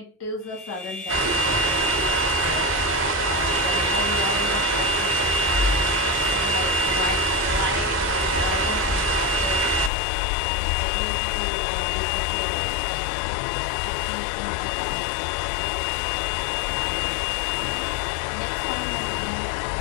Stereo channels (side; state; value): right; drops out; at 9.9 s